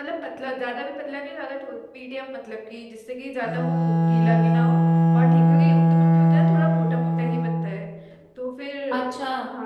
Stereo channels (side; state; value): both; identical; correlation 1.00